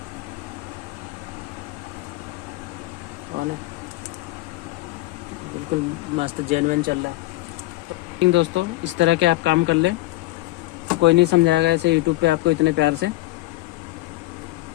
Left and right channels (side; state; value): right; quieter; 18.3 dB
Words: ऑन है, बिल्कुल मस्त जेन्युइन चल रहा है। तो दोस्तों इस तरह के आप काम कर लें, कोई नहीं समझाएगा ऐसे यूट्यूब पे आपको इतने प्यार से।